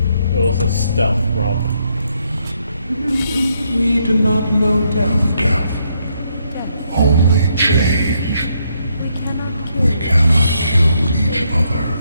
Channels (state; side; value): inverted; both; correlation -0.75